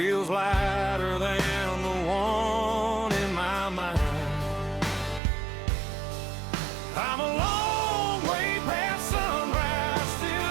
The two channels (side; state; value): left; drops out; at 5.2 s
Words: lighter than the one in my mind. I'm a long way past sunrise,